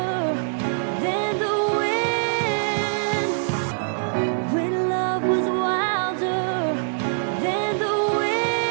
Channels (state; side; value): silent; left; digital silence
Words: than the wind. When love was wilder than the